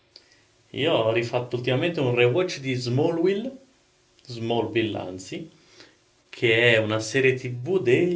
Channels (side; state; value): both; identical; correlation 1.00